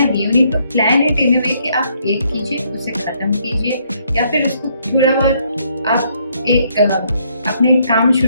you need to plan it in a way कि आप एक कीजिए, उसे ख़त्म कीजिए, या फिर उसको थोड़ा बहुत आप एक आपने एक काम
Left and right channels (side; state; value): both; inverted; correlation -0.70